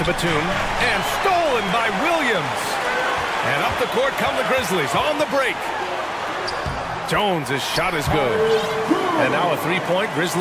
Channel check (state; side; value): identical; both; correlation 1.00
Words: Batum, and stolen by Williams. And up the court come the Grizzlies on the break. Jones' shot is good. And now a 3-point